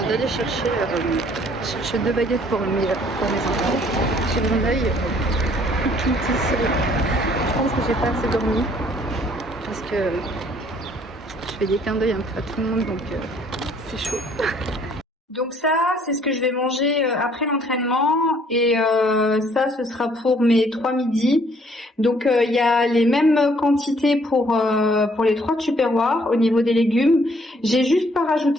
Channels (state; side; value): normal; both; correlation 0.62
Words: d'aller chercher 2 baguettes pour mes enfants. J'ai mon œil tout ici. Je pense que j'ai pas assez dormi parce que je fais des clins d'œil un peu à tout le monde, donc c'est chaud. Donc ça, c'est ce que je vais manger après l'entraînement et ça, ce sera pour mes 3 midis. Donc il y a les mêmes quantités pour les 3 tupperwares au niveau des légumes. J'ai juste pas